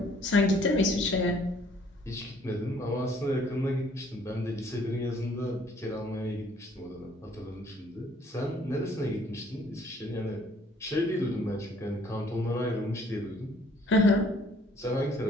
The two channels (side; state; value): both; normal; correlation 0.60